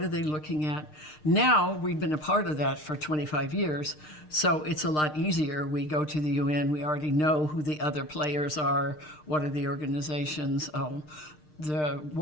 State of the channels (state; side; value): late; right; 6.6 ms